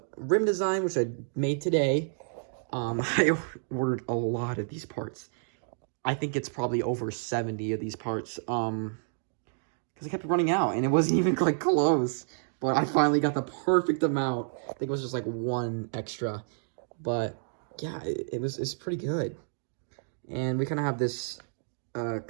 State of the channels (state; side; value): silent; left; digital silence